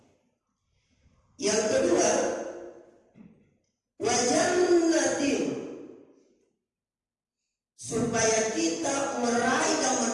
Yang kedua, wa jannatin, supaya kita meraih dan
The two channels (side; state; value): both; identical; correlation 1.00